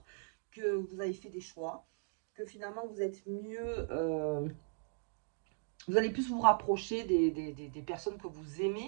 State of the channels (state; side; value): silent; left; digital silence